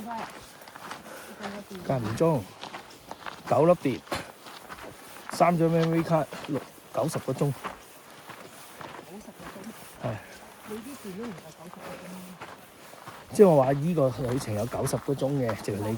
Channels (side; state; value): both; identical; correlation 1.00